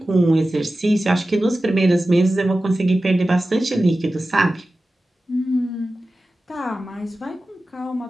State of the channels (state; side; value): normal; both; correlation 0.95